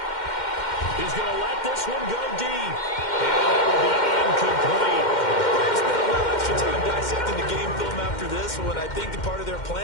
He's going to let this one go deep. And it will be incomplete. Time dissecting the game film after this one. I think the part of their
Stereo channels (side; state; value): right; late; 2.1 ms